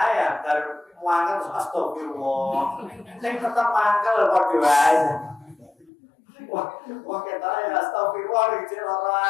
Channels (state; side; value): drops out; right; at 5.9 s